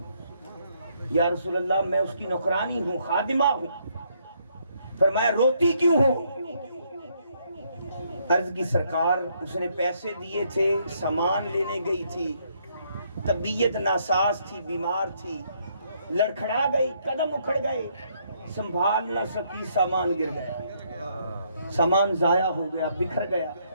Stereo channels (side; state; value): both; inverted; correlation -0.71